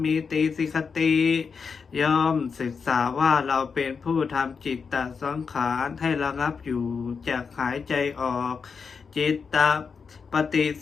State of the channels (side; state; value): right; quieter; 5.6 dB